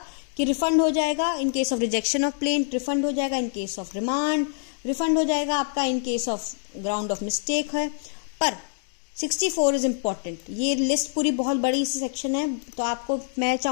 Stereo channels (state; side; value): silent; right; 61 dB below the other